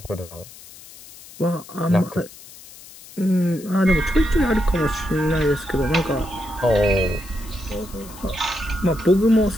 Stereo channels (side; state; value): left; noise; hiss, 19 dB below the sound